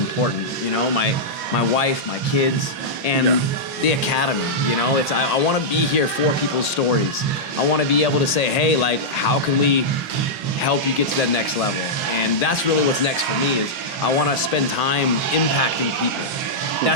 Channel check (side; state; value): both; normal; correlation -0.09